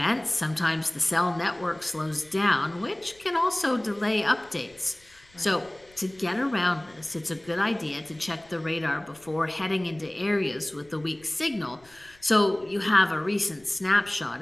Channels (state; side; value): noise; left; rumble, 29 dB below the sound